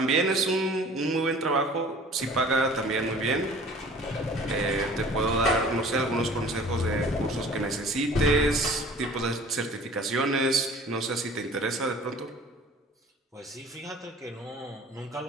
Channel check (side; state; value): both; normal; correlation 0.47